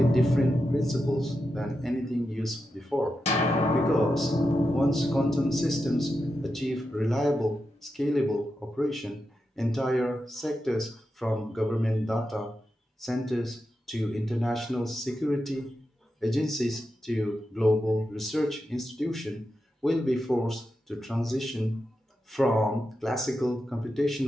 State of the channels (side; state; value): both; normal; correlation 0.88